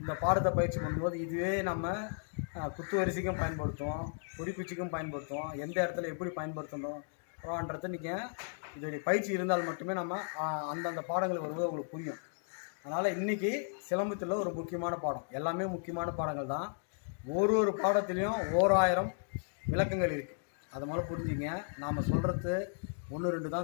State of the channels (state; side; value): silent; right; digital silence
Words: பாடத்தை பயிற்சி பண்ணும்போது இதுவே நம்ம குத்து வரிசைக்கும் பயன்படுத்துவோம், குறிக்குச்சிக்கும் பயன்படுத்துவோம். எந்த இடத்துல எப்படி பயன்படுத்தணும்ன்றது நீங்கள் இதோடைய பயிற்சி இருந்தால் மட்டுமே நம்ம அந்தந்த பாடங்கள் வரும்போது உங்களுக்கு புரியும். அதனால் இன்றைக்கி சிலம்பத்தில் ஒரு முக்கியமான பாடம், எல்லாமே முக்கியமான பாடங்கள் தான். ஒரு பாடத்துலேயும் 1000 விளக்கங்கள் இருக்குது. அதை முதல்ல புரிஞ்சுங்க. நாம் சொல்கிறது 1 2